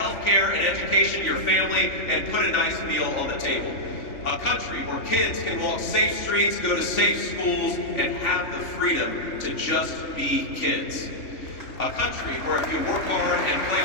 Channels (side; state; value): right; late; 3.5 ms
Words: care and education to your family, and put a nice meal on the table. A country where kids can walk safe streets, go to safe schools, and have the freedom to just be kids. A country where if you work hard and play